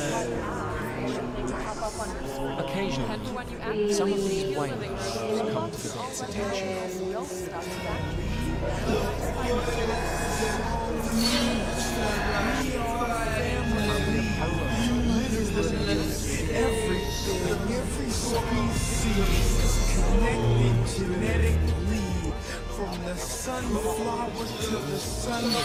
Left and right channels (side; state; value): both; identical; correlation 1.00